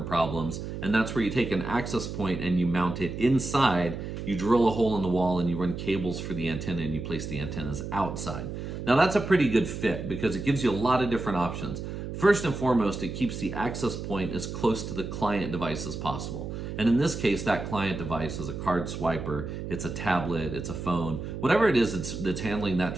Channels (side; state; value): right; noise; hum, 7 dB below the sound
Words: problems. And that's where you take an access point and you mount it inside. You drill a hole in the wall and you run cables for the antenna and you place the antennas outside. Now that's a pretty good fit because it gives you a lot of different options. First and foremost, it keeps the access point as close to the client device as possible. And in this case, that client device is a card swiper, it's a tablet, it's a phone, whatever it is that's handling that